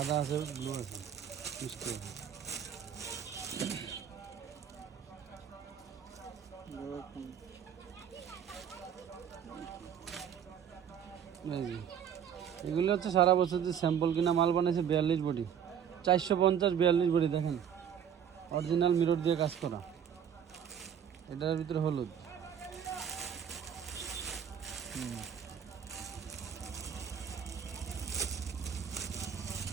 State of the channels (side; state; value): left; quieter; 8.6 dB